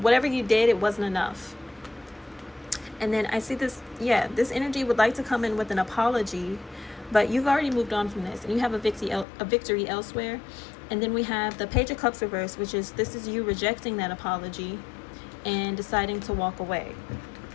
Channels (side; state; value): right; drops out; at 9.2 s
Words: whatever you did, it wasn't enough. And then I see this, yeah, this energy would like to come in with an apology, but you've already moved on from this and you have a victory elsewhere. And then we have the Page of Cups reversed, which is, this is you rejecting that apology and deciding to walk away.